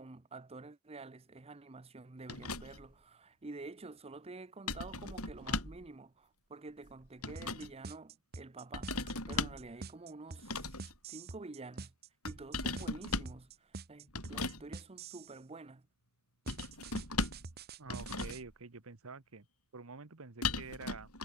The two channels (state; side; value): normal; both; correlation 0.32